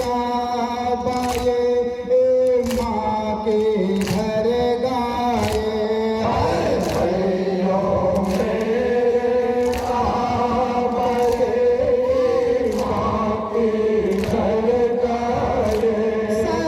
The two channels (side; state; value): both; identical; correlation 1.00